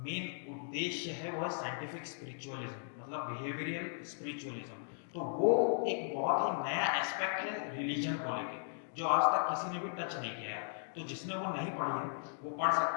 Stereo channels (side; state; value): right; silent; digital silence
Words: मेन उद्देश्य है वो है साइंटिफिक स्पिरिचुअलिज्म, मतलब बिहेवियरल स्पिरिचुअलिज्म। तो वो एक बहुत ही नया एस्पेक्ट है रिलीजन को लेके। जो आज तक किसी ने भी टच नहीं किया है। तो जिसने वो नहीं पढ़ी है वो पढ़